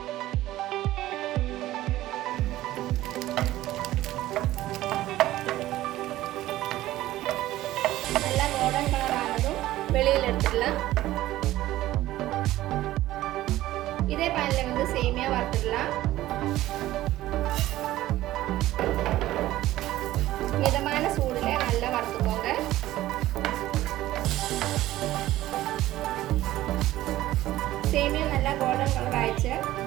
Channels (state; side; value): quieter; left; 15.4 dB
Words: நல்லா கோல்டன் கலர் ஆனதும் வெளியில் எடுத்துடலாம். இதே பேனில் வந்து சேமியா வறுத்துடலாம். மிதமான சூடுல நல்லா வறுத்துக்கோங்க. சேமியா நல்லா கோல்டன் கலர் ஆயிடுச்சு.